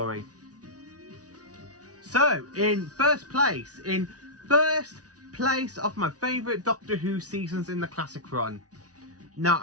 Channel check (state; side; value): late; left; 0.68 ms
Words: So, in first place of my favourite Doctor Who seasons in the classic run. Now,